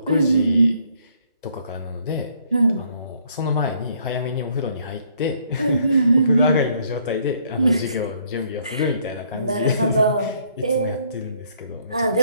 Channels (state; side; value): inverted; both; correlation -0.66